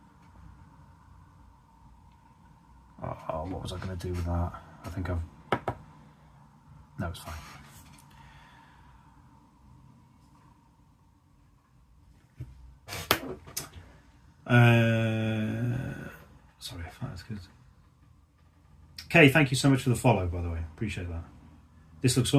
Oh, what was I going to do with that? I think I've... No, it's fine. Sorry, that's good. Okay, thank you so much for the follow, by the way. Appreciate that. This looks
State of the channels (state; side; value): identical; both; correlation 1.00